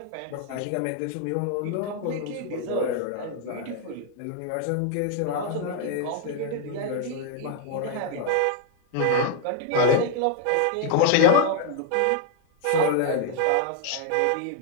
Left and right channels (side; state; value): both; different; correlation 0.00